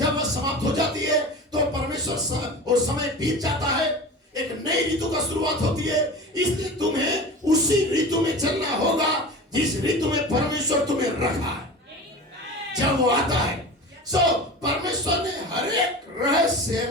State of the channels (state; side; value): normal; both; correlation 0.33